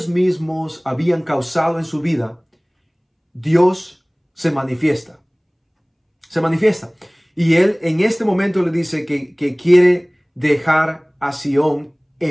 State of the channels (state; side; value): identical; both; correlation 1.00